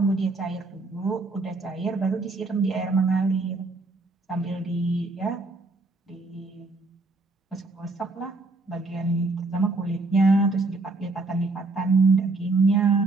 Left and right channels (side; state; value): left; quieter; 3.3 dB